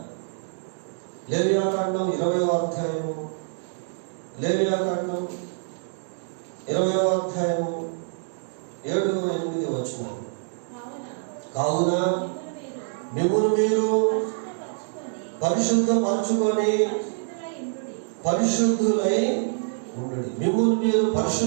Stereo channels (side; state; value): left; silent; digital silence